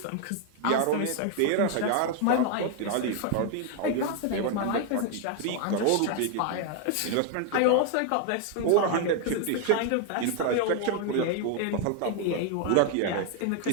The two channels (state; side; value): different; both; correlation 0.01